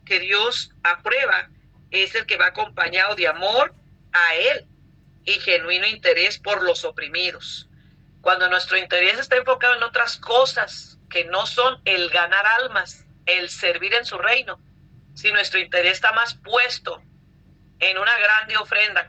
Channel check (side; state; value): both; identical; correlation 1.00